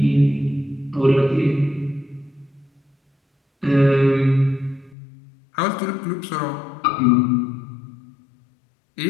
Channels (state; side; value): drops out; right; at 5.0 s